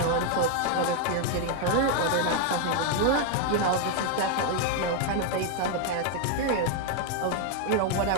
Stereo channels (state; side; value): different; both; correlation 0.01